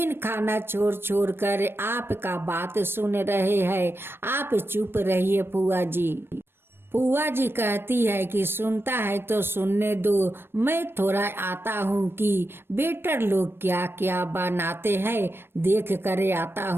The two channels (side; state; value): left; late; 0.11 ms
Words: खाना छोड़ छोड़ कर आपका बात सुन रहे हैं, आप चुप रहिए फुआ जी। फुआ जी कहती है कि सुनता है तो सुनने दो, मैं थोड़ा आता हूँ कि वेटर लोग क्या क्या बनाते हैं देख कर आता